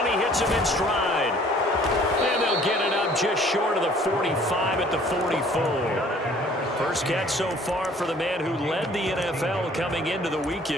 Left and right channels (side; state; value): both; normal; correlation 0.55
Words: he hits him in stride. And they'll get it up just short of the 45 at the 44. First catch so far for the man who led the NFL coming into the